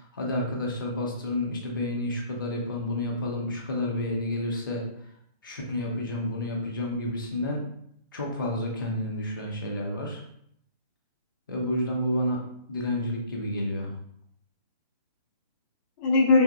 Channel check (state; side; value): inverted; both; correlation -0.55